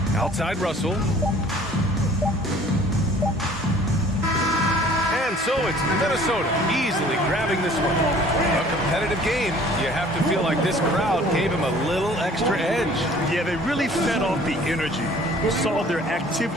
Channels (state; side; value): normal; both; correlation 0.52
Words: Outside Russell. And so it's Minnesota easily grabbing this one. A competitive game. You have to feel like this crowd gave him a little extra edge. Yeah, they really fed off the energy. You saw their